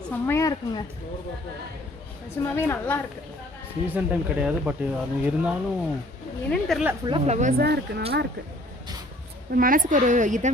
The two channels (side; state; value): both; normal; correlation 0.56